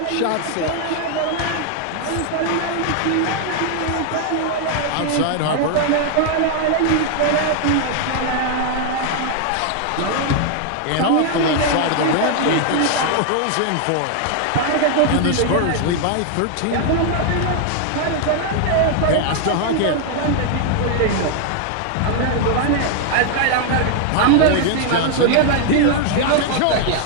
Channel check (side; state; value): both; different; correlation 0.00